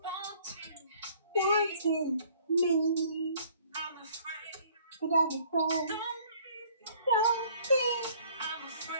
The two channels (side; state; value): both; inverted; correlation -0.58